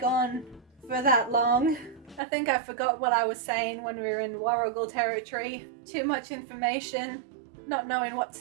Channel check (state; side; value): drops out; left; at 2.2 s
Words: on for that long. I think I forgot what I was saying when we were in Warrigal territory. Too much information, not knowing what to